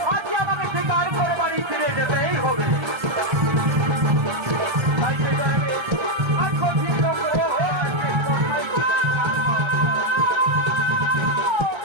আজকে আমাকে স্বীকার করে বাড়ি ফিরে যেতেই হবে। তাই সে কারণে আজ গভীর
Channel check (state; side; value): late; left; 1.3 ms